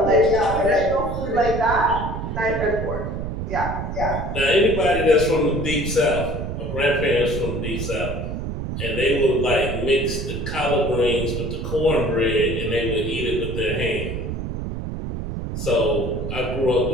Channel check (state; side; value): noise; right; rumble, 5 dB below the sound